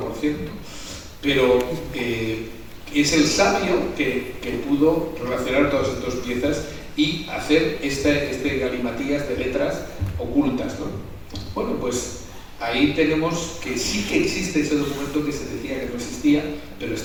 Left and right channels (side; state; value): both; identical; correlation 1.00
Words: cierto, pero es el sabio que pudo relacionar todas estas piezas y hacer este galimatías de letras ocultas, ¿no? Bueno, pues ahí tenemos que sí que existe ese documento que se decía que no existía, pero